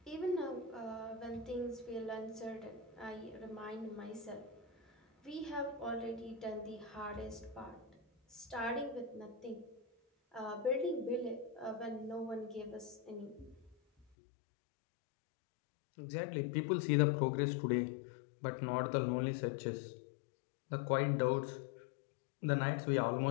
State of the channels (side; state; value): right; drops out; at 14.1 s